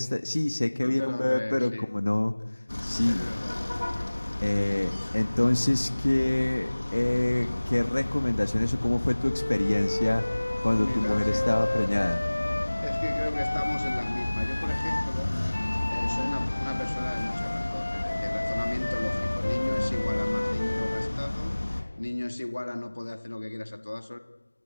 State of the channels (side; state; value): both; inverted; correlation -1.00